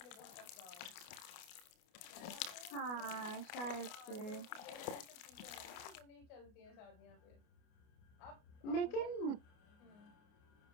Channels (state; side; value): late; right; 29 ms